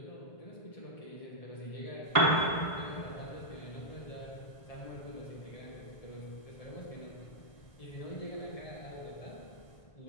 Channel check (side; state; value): right; late; 1.0 ms